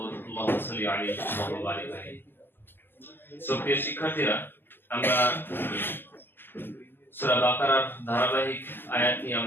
আল্লাহুম্মা সাল্লি আলাইহি ওয়া বারিক আলাইহি। সুপ্রিয় শিক্ষার্থীরা, আমরা সূরা বাকারার ধারাবাহিক আয়াত নিয়ে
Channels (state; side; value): late; right; 0.097 ms